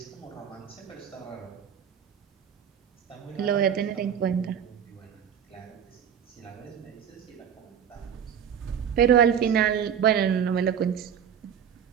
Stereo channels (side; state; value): left; quieter; 8.4 dB